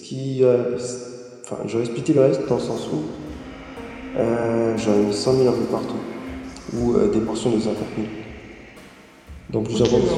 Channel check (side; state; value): both; identical; correlation 1.00